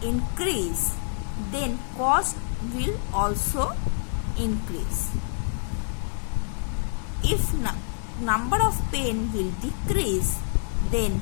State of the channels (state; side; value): silent; right; 60 dB below the other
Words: increase, then cost will also increase. If number of pen will decrease, then